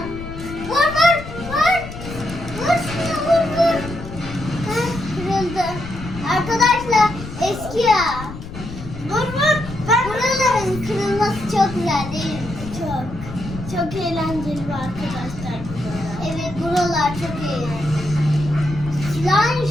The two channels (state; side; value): noise; left; rumble, 11 dB below the sound